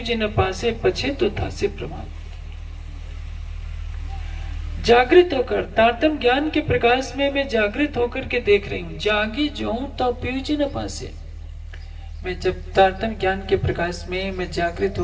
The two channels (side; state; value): both; identical; correlation 1.00